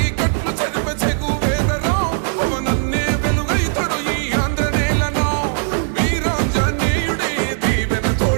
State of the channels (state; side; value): silent; left; digital silence